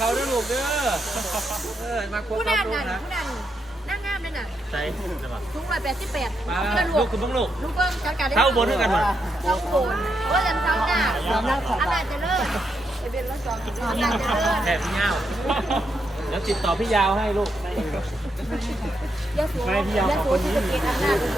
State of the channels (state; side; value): normal; both; correlation 0.81